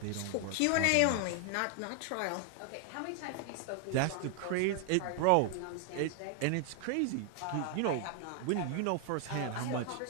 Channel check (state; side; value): different; both; correlation 0.00